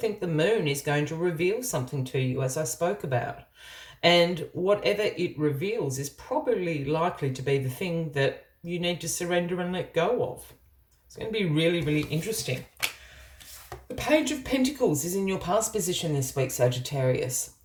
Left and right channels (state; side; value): identical; both; correlation 1.00